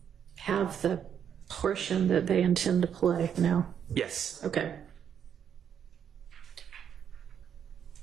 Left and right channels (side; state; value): left; quieter; 8.4 dB